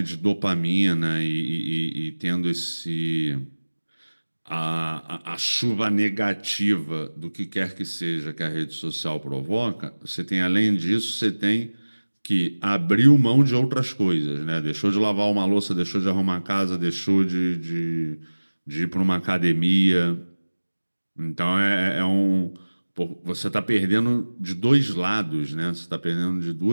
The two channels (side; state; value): both; inverted; correlation -1.00